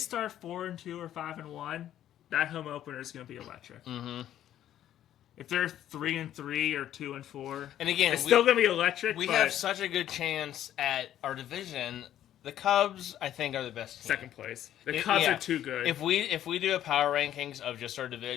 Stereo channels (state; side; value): quieter; right; 11.6 dB